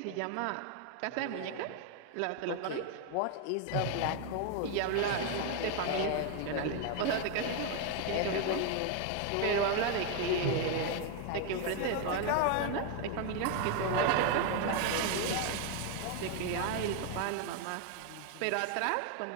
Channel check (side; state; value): both; different; correlation 0.01